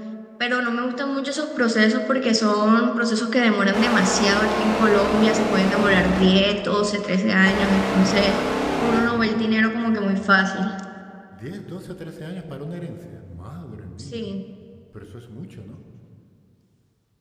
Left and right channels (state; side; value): identical; both; correlation 1.00